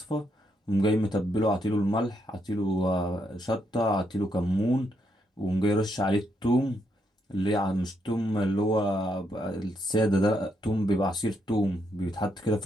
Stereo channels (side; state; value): both; normal; correlation 0.78